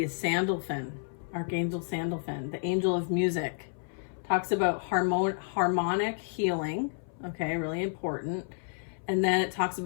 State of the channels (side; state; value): right; silent; 57 dB below the other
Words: is Sandalphon, Archangel Sandalphon, the angel of music. Talks about harmonic healing. Okay, really important. And then it talks